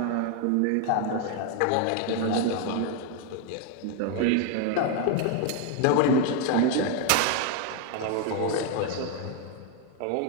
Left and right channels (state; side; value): different; both; correlation 0.01